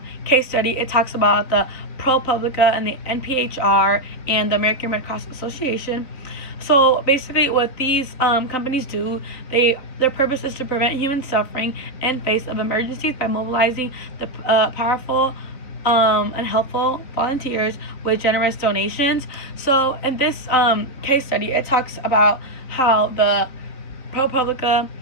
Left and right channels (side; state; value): right; late; 3.9 ms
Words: case study, it talks about the ProPublica and the NPHR and the American Red Cross Association. So basically, what these companies do, their purpose is to prevent human suffering in face of emergencies by mobilizing the powerful and helpful volunteers with generous donations. So in this case study, it talks about how the ProPublica